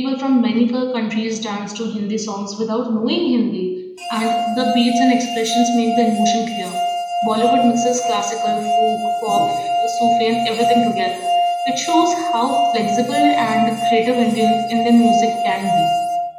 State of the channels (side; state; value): both; identical; correlation 1.00